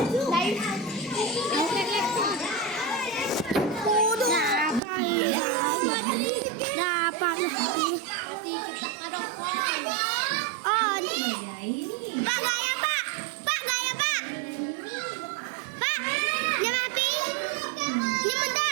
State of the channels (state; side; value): drops out; left; at 4.8 s